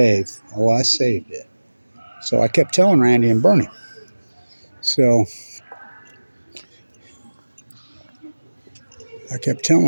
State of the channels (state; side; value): inverted; both; correlation -1.00